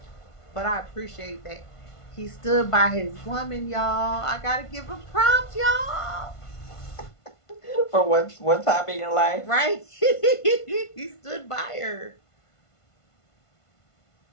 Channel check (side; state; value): right; late; 1.5 ms